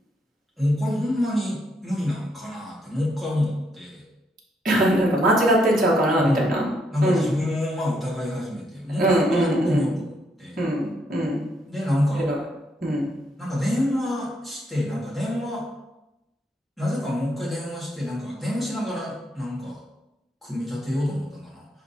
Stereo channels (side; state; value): both; normal; correlation 0.75